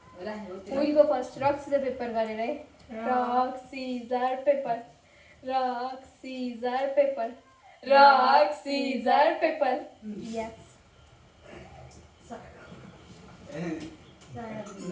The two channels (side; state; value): both; identical; correlation 1.00